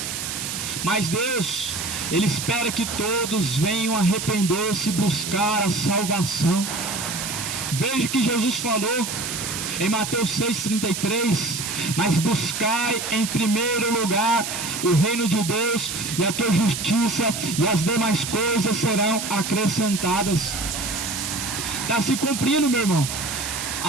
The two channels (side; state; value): right; noise; hiss, 5 dB below the sound